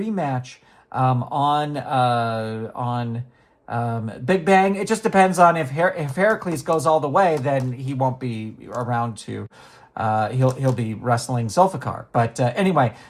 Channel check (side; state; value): both; identical; correlation 1.00